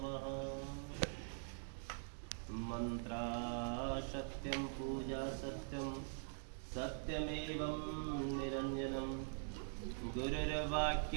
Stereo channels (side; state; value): left; silent; digital silence